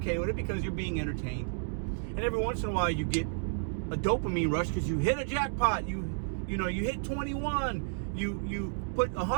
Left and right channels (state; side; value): silent; left; digital silence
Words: with it because you're being entertained. And every once in a while you get a dopamine rush because you hit a jackpot. You hit 21. You put